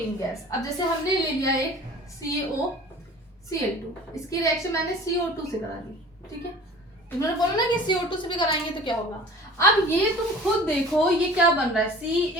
gas. अब जैसे हमने ले लिया एक CaOCl2, इसकी रिएक्शन मैंने CO2 से करा दी, ठीक है। तुमने बोला ना कि CO2 से भी कराएंगे तो क्या होगा। अब ये तुम खुद देखो ये क्या बन रहा है,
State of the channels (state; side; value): normal; both; correlation 0.44